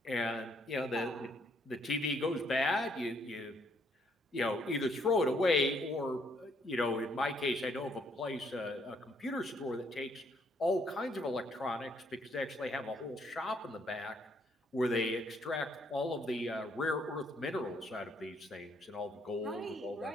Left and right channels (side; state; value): both; normal; correlation 0.69